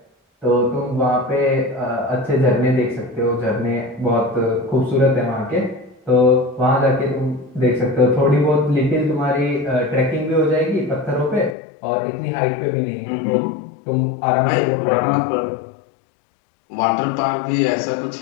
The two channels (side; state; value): right; drops out; at 11.6 s